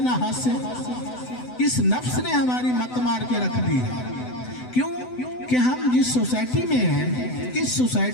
ہاسے۔ اس نفس نے ہماری مت مار کے رکھ دی ہے۔ کیوں کہ ہم جس سوسائٹی میں ہیں، اس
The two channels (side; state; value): right; late; 7.9 ms